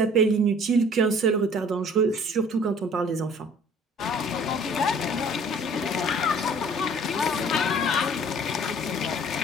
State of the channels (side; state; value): both; normal; correlation 0.52